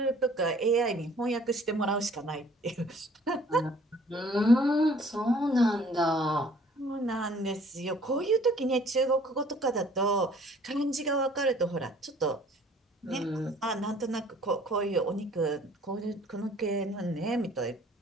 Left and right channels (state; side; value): normal; both; correlation 0.55